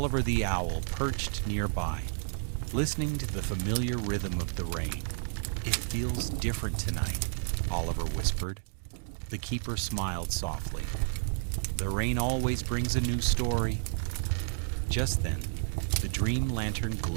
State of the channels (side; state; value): left; silent; digital silence